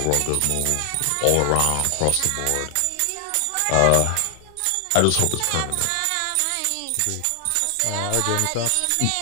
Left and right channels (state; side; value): different; both; correlation 0.00